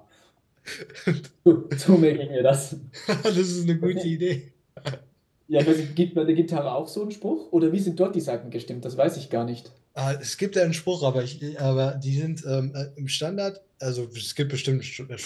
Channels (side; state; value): both; identical; correlation 1.00